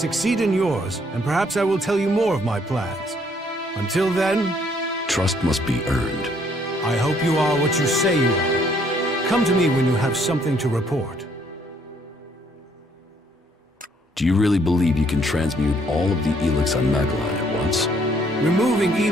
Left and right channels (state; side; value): normal; both; correlation 0.66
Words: in yours, and perhaps I will tell you more of my plans. Until then... Trust must be earned. I hope you are what you say you are. Come to me when you have something to report. Do you really believe you can transmute all of the Elex on Magellan at once? Removing